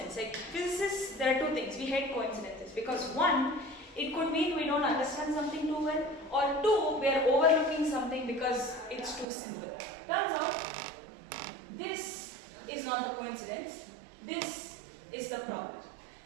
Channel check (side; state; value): left; drops out; at 9.2 s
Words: Like physicists, there are 2 things. We hate coincidences because 1, it could mean we don't understand something too well, or 2, we are overlooking something because it's too simple. Turns out, this is not the coincidence. This is the problem.